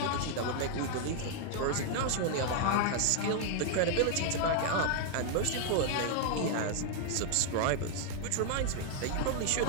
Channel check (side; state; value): both; different; correlation 0.00